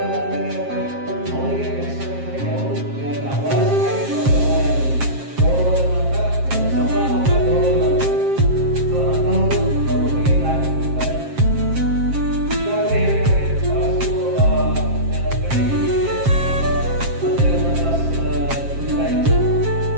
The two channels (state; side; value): late; left; 7.5 ms